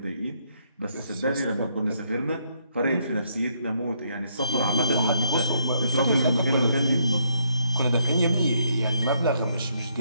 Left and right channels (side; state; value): both; inverted; correlation -0.71